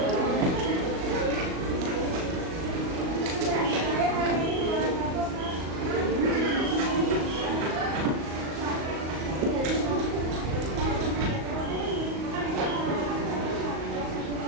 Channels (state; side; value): late; left; 38 ms